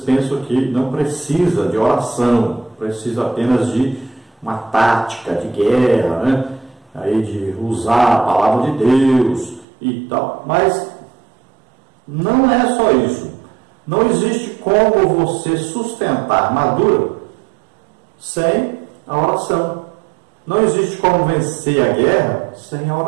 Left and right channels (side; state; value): left; drops out; at 9.7 s